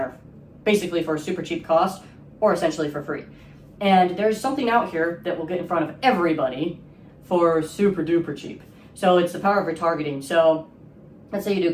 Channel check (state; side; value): identical; both; correlation 1.00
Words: basically for a super cheap cost or essentially for free. And there's something out here that will get in front of everybody for super duper cheap. So it's the power of retargeting. So let's say you do